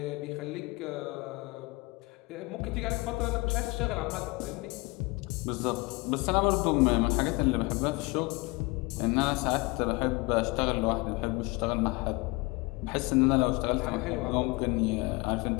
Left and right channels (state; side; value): quieter; right; 24.6 dB